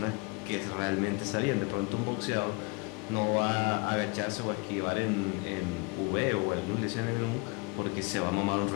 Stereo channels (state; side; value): quieter; right; 28.4 dB